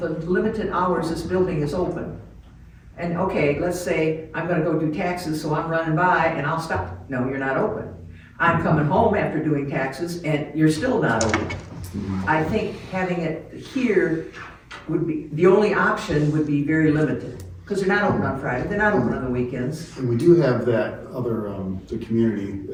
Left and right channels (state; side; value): identical; both; correlation 1.00